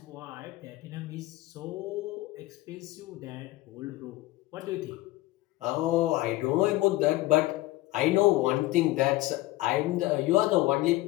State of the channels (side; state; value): right; quieter; 18.2 dB